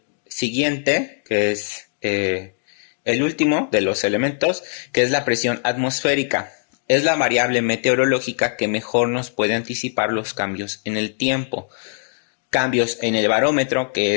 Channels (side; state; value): right; silent; digital silence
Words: siguiente, que es el último de los elementos, que es la presión atmosférica. Es la variable meteorológica que mejor nos puede anticipar los cambios en el tiempo. Cambios en el barómetro, que